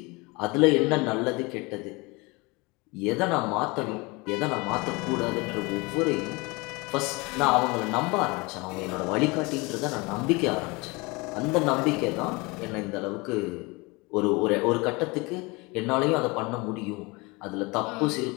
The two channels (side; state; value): right; quieter; 25.8 dB